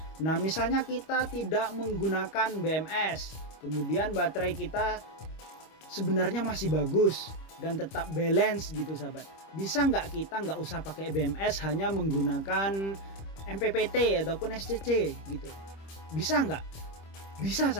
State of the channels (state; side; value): late; right; 25 ms